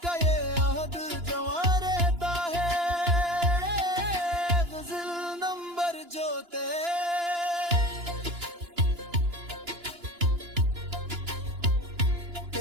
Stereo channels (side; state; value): left; late; 2.9 ms